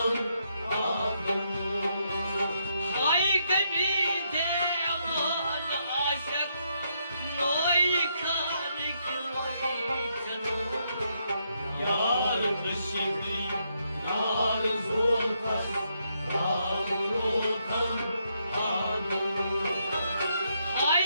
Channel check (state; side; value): inverted; both; correlation -0.77